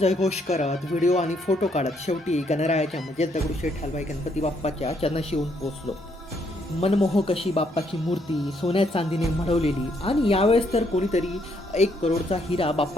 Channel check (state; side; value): normal; both; correlation 0.72